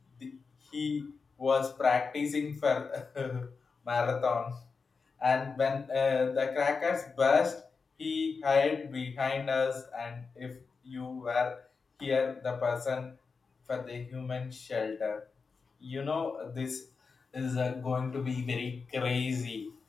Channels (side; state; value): right; quieter; 4.9 dB